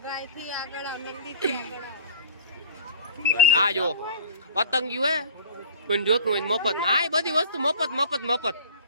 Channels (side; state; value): both; inverted; correlation -0.41